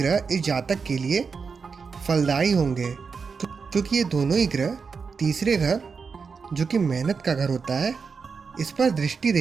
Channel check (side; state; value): left; quieter; 5.4 dB